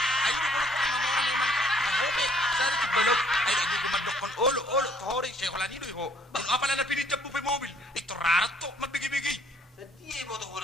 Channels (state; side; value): normal; both; correlation 0.61